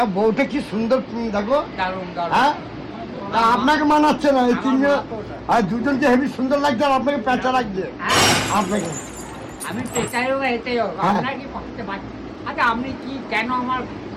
বউটা কি সুন্দর দেখো। দারুণ দারুণ। হ্যাঁ, আপনাকে মানাচ্ছে না এই তিনজন, আর দুজনকে হেভি সুন্দর লাগছে, আর আপনাকে পেঁচা লাগছে আপনাকে। আমি পেঁচাই হোক এটাই হোক, আপনার কি করতে পারছি? আচ্ছা আপনি কি কেন আমার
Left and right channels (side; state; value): both; identical; correlation 1.00